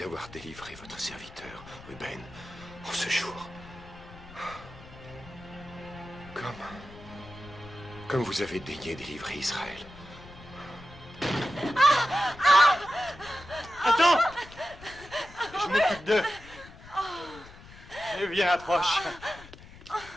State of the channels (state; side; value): noise; left; rumble, 18 dB below the sound